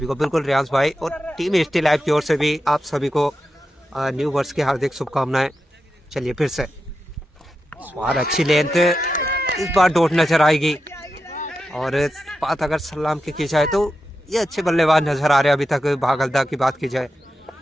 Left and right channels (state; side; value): normal; both; correlation 0.89